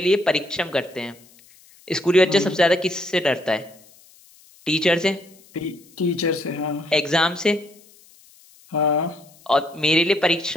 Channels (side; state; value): left; noise; hiss, 27 dB below the sound